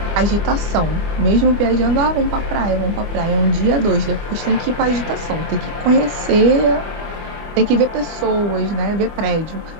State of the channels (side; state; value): left; late; 24 ms